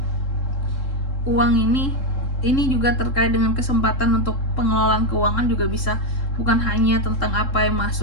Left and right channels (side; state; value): right; late; 3.7 ms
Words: uang ini juga terkait dengan kesempatan untuk pengelolaan keuangan juga bisa, bukan hanya tentang apa yang